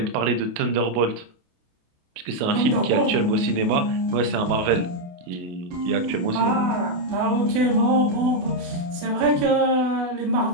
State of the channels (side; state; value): left; late; 28 ms